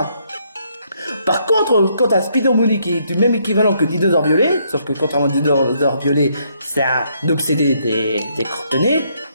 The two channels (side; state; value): both; inverted; correlation -0.72